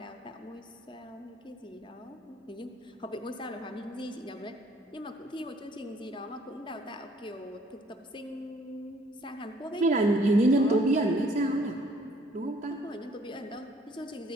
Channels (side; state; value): both; normal; correlation 0.61